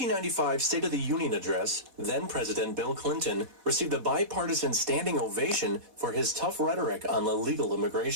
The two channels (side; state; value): left; late; 4.1 ms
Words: State of the Union address, then President Bill Clinton received a bipartisan standing ovation for his tough rhetoric on illegal